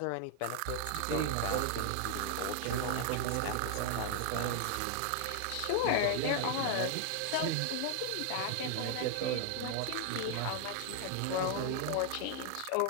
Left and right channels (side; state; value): both; different; correlation 0.00